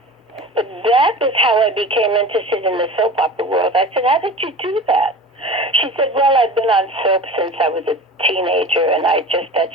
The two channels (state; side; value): normal; both; correlation 0.35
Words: But that was how I became interested in the soap opera world. I said, how did you do that? She said, well, I've been on soap since I was a teenager, and that's just